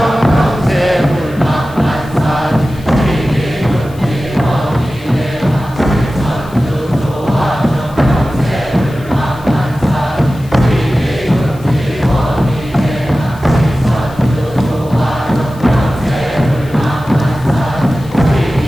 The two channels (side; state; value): left; noise; hiss, 24 dB below the sound